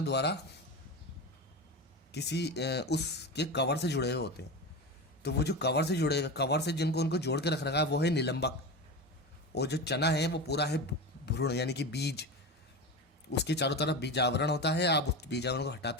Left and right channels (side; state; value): both; normal; correlation 0.24